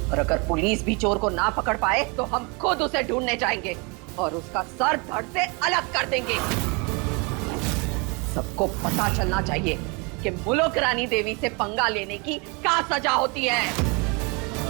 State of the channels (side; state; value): left; quieter; 30.5 dB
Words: और अगर पुलिस भी चोर को ना पकड़ पाए तो हम खुद उसे ढूंढने जाएंगे और उसका सर धड़ से अलग कर देंगे। सबको पता चलना चाहिए कि मुलुक रानी देवी से पंगा लेने की क्या सजा होती है।